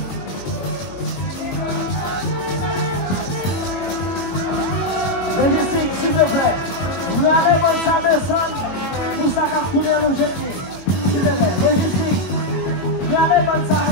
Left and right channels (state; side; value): late; right; 22 ms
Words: Logistique, s'il te plaît. Vous allez voir ça descendre pour ça qu'à courir le jeter. S'il te plaît, logistique. Vous allez voir ça